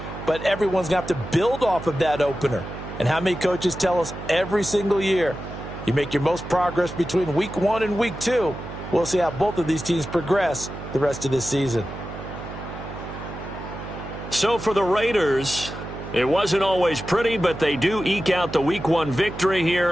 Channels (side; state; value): right; noise; hum, 10 dB below the sound